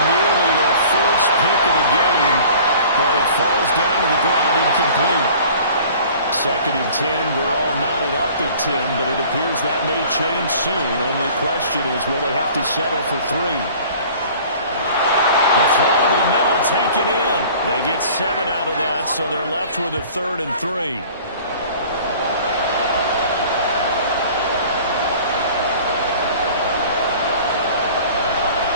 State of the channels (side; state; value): both; inverted; correlation -0.48